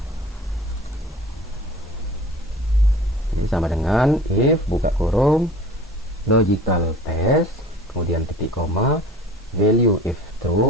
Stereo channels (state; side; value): normal; both; correlation 0.43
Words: ini sama dengan if buka kurung logical test, kemudian titik koma, value if